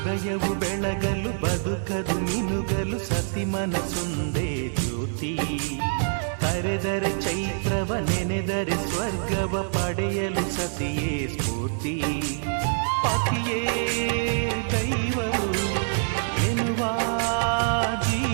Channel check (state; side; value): silent; left; digital silence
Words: ಹೃದಯವು ಬೆಳಗಲು ಬದುಕದು ಮಿನುಗಲು ಸತಿ ಮನಸೊಂದೇ ಜ್ಯೋತಿ. ಕರೆದರೆ ಚೈತ್ರವ ನೆನೆದರೆ ಸ್ವರ್ಗವ ಪಡೆಯಲು ಸತಿಯೇ ಸ್ಫೂರ್ತಿ. ಪತಿಯೇ ದೈವವು ಎನ್ನುವ